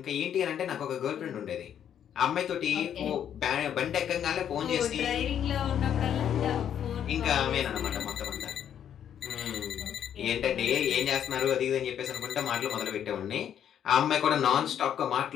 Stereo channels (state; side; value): quieter; right; 9.4 dB